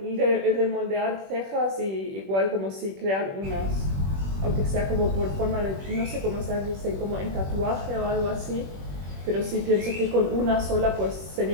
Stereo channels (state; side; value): late; left; 21 ms